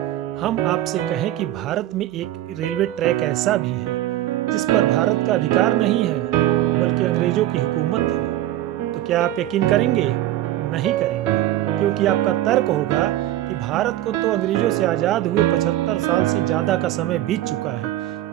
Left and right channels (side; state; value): left; quieter; 13.7 dB